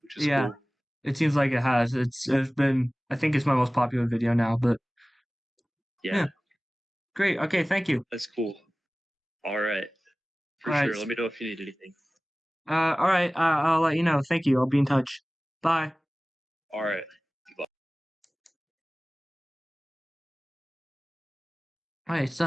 which is Yeah, cool. it seems like it has. It's been I think it's my most popular video now, but Yeah, great. Okay, thank you. that's cool. All right, for All right. sure. Let me know if you need anything. All right. I'll let you know. Thank you. I'll be in touch. Bye. All right. Bye. All right.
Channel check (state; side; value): normal; both; correlation 0.98